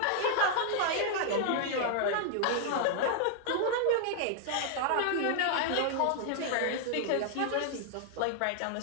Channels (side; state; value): both; different; correlation 0.00